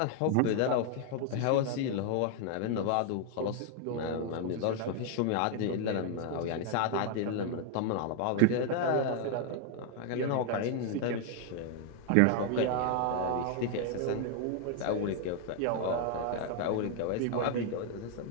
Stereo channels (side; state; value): both; different; correlation 0.00